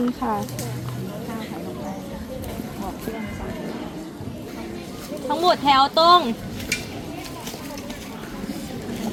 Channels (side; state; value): both; identical; correlation 1.00